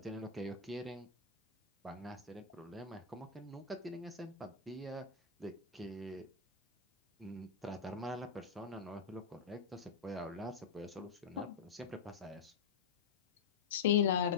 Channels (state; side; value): quieter; right; 5.8 dB